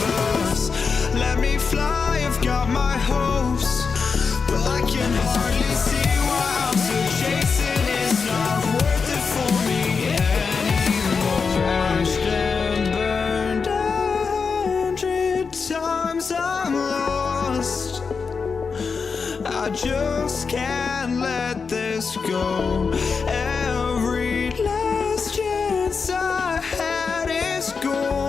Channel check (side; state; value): right; quieter; 5.2 dB